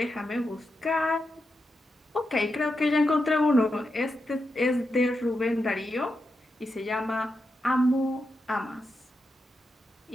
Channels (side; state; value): both; normal; correlation 0.87